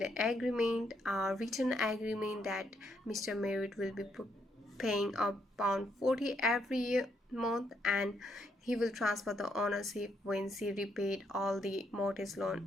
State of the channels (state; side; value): normal; both; correlation 0.75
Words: an agreement, a written agreement, that Mr. Merritt will be paying £40 every month, and he will transfer the ownership when she repaid all the mortgage